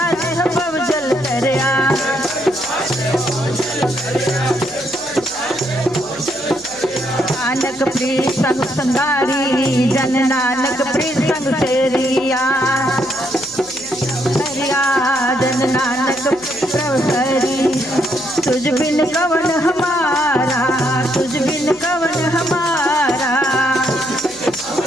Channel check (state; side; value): noise; right; hum, 27 dB below the sound